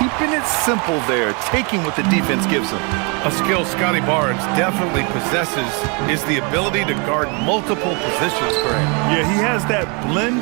it simple there, taking what the defense gives him. A skill Scotty Barnes definitely possesses is the ability to guard multiple positions for him. Yeah, he has that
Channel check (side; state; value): left; quieter; 33.2 dB